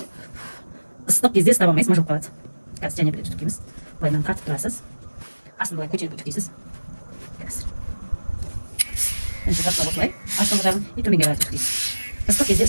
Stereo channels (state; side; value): inverted; both; correlation -1.00